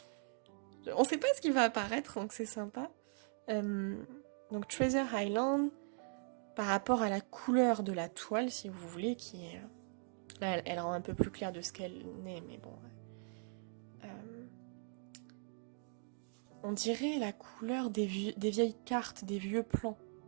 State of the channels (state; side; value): silent; left; 51 dB below the other